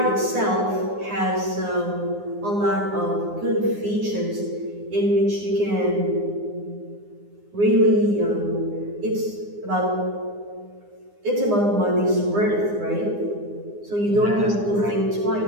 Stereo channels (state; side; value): late; left; 9.7 ms